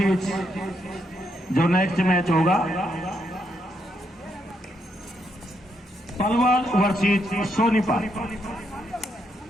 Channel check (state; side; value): normal; both; correlation 0.78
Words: जो नेक्स्ट मैच होगा, पलवल वर्सेस सोनीपत।